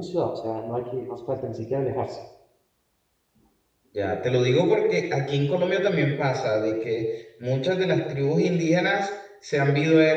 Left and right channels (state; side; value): identical; both; correlation 1.00